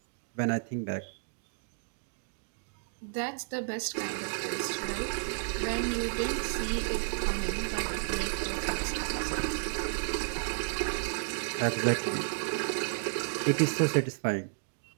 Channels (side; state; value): left; silent; digital silence